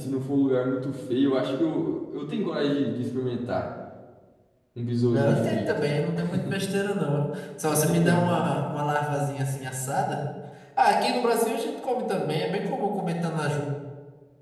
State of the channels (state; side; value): identical; both; correlation 1.00